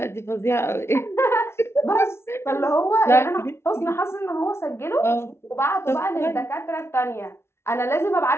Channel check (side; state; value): right; late; 0.12 ms